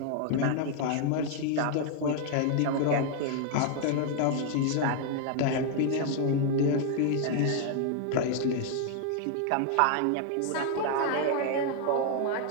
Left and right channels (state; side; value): different; both; correlation 0.00